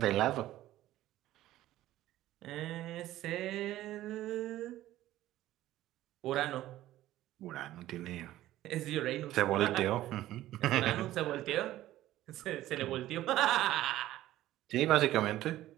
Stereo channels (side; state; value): left; quieter; 14.6 dB